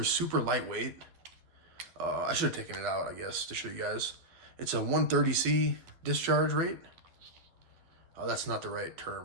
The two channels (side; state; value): left; late; 12 ms